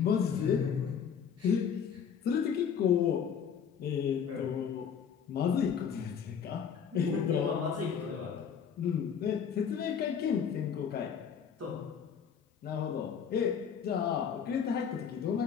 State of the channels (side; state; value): right; quieter; 7.3 dB